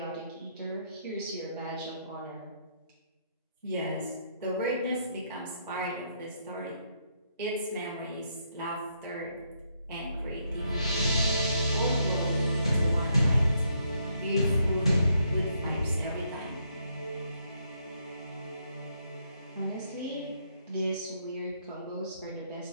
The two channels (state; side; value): inverted; both; correlation -0.74